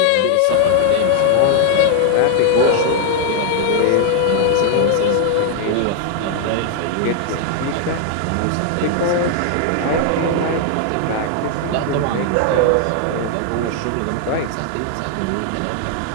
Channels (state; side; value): different; both; correlation 0.00